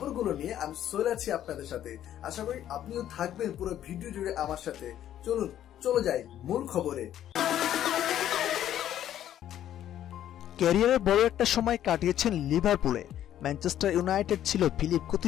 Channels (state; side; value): quieter; right; 11.4 dB